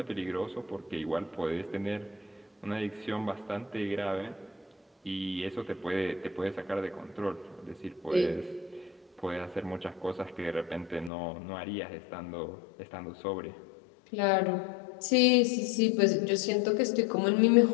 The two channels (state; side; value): drops out; right; at 11.1 s